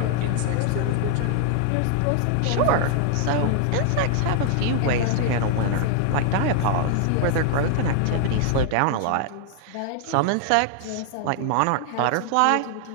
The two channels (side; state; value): both; different; correlation 0.00